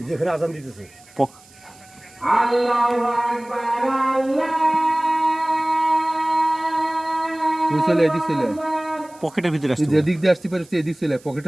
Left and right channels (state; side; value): noise; right; hiss, 26 dB below the sound